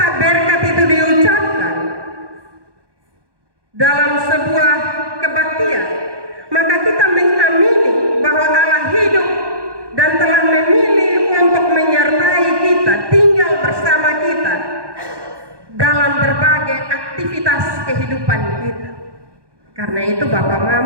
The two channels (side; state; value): left; late; 1.2 ms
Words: berkat itu diucapkan dalam sebuah kebaktian, maka kita mengamini bahwa Allah hidup dan telah memilih untuk menyertai kita, tinggal bersama kita dalam berbagai aktivitas aktivitas kehidupan kita. Karena itu Bapak